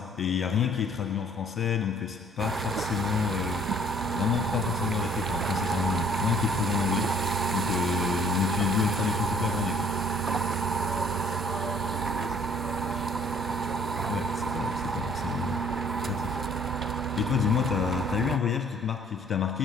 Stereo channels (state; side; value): normal; both; correlation 0.58